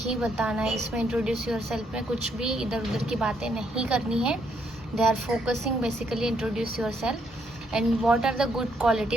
बताना है। इसमें इंट्रोड्यूस यूर सेल्फ में कुछ भी इधर उधर की बातें नहीं करनी है। They are focusing basically introduce yourself and what are the good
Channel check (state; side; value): normal; both; correlation 0.73